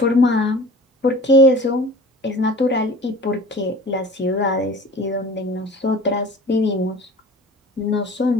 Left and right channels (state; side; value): normal; both; correlation 0.41